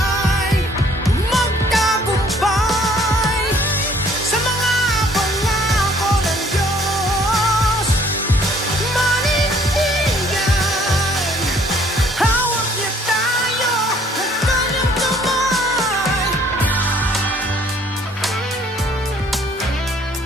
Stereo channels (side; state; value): both; normal; correlation 0.60